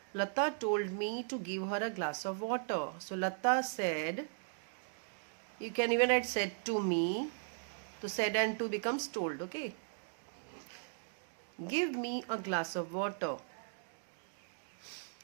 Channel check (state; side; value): silent; left; digital silence